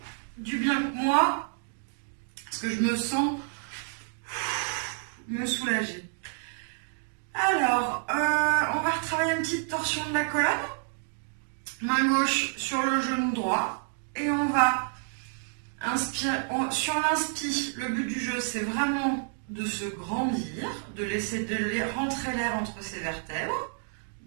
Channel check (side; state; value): left; silent; digital silence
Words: du bien que moi, parce que je me sens me soulager. Alors, on va retravailler une petite torsion de la colonne. Main gauche sur le genou droit. Et on va inspirer. Sur l'inspire, le but du jeu, c'est vraiment de se grandir, de laisser rentrer l'air entre ses vertèbres.